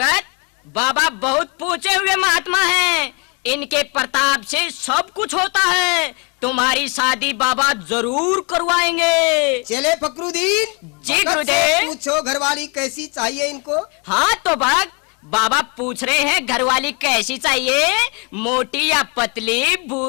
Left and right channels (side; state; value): right; quieter; 32.5 dB